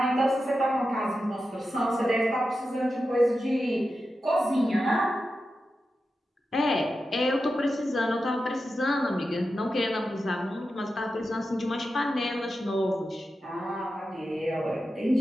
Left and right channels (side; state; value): both; normal; correlation 0.91